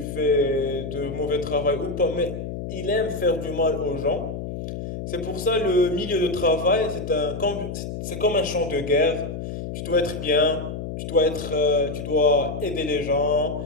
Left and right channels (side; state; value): left; noise; hum, 6 dB below the sound